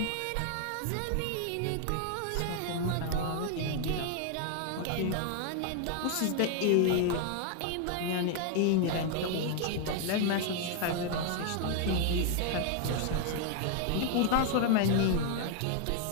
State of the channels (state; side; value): different; both; correlation 0.00